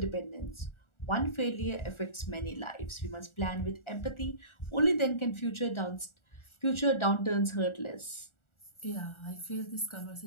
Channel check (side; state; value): right; late; 1.4 ms